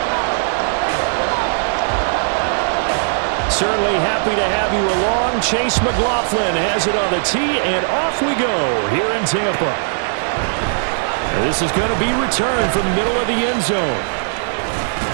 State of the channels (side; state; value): left; silent; 67 dB below the other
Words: Certainly happy to have you along. Chase McLaughlin has it on the tee, and off we go here in Tampa. And this is going to be returned from the middle of the end zone.